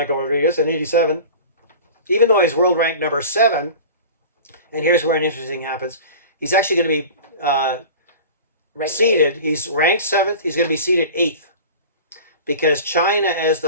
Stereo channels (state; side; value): inverted; both; correlation -0.37